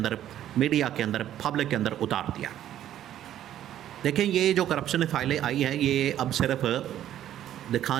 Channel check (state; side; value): quieter; left; 11.7 dB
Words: मीडिया के अंदर, पब्लिक के अंदर उतार दिया। देखें, ये जो करप्शन फ़ाइलें आई हैं ये अब सिर्फ